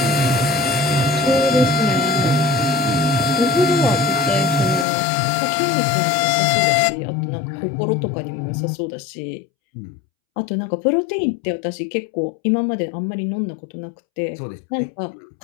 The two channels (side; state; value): right; drops out; at 4.9 s